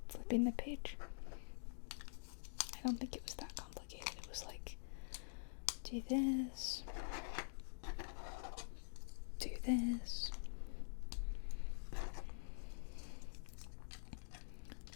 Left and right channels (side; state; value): right; silent; digital silence